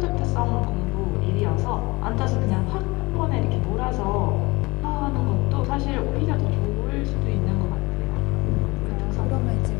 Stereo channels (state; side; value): quieter; right; 23.4 dB